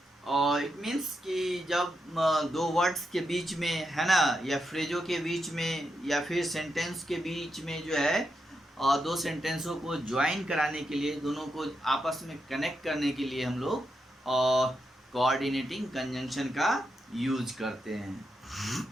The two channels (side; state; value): both; normal; correlation 0.84